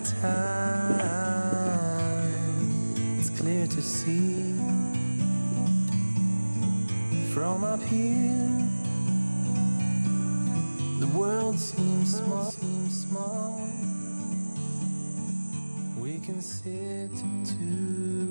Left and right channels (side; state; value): both; inverted; correlation -1.00